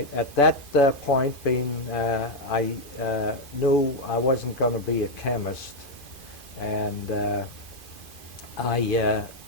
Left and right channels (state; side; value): late; right; 2.5 ms